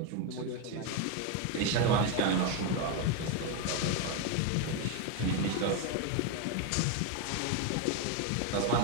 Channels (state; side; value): different; both; correlation 0.02